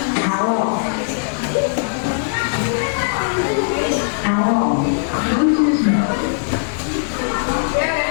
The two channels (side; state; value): right; silent; digital silence